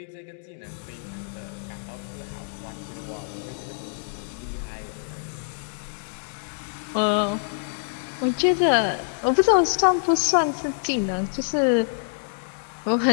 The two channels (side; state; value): right; silent; digital silence